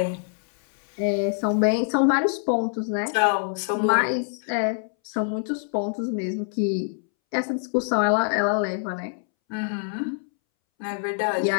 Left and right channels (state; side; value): silent; right; 62 dB below the other